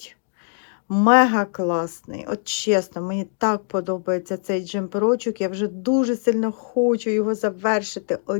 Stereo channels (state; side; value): silent; right; 57 dB below the other